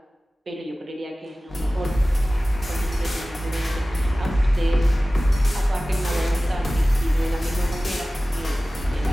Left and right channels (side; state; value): both; normal; correlation 0.97